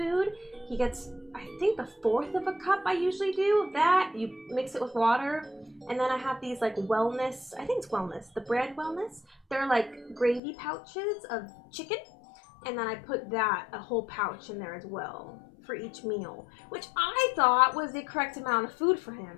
He gets, I think, a fourth of a cup. I usually do of that. You mix it with water, and then I have these like wellness. I think it's wellness. The brand wellness. They're like gravy pouches of chicken, and then I put that a whole pouch in there as well for each meal, which I thought was the correct amount of food for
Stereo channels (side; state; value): right; drops out; at 10.4 s